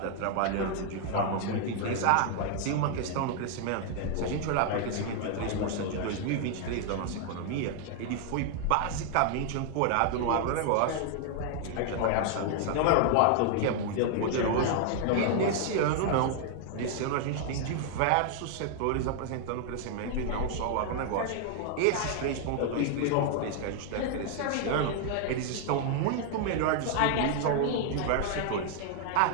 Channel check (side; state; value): both; different; correlation 0.00